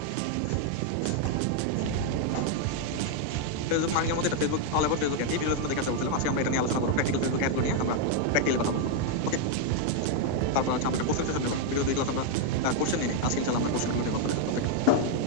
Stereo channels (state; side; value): different; both; correlation 0.01